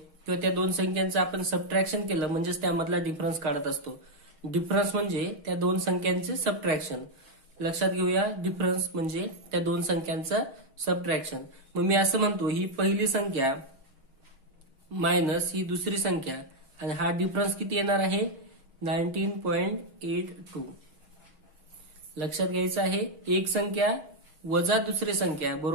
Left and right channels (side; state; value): left; late; 6.3 ms